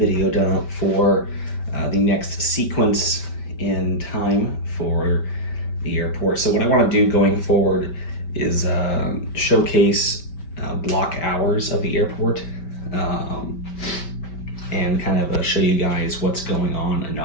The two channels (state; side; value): late; right; 5.2 ms